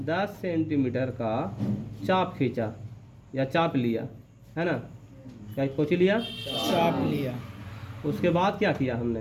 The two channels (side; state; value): both; identical; correlation 1.00